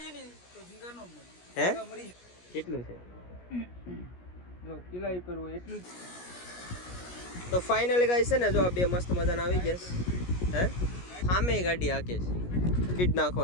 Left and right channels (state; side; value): late; right; 17 ms